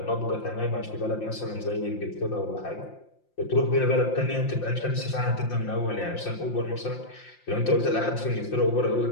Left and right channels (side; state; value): right; late; 5.7 ms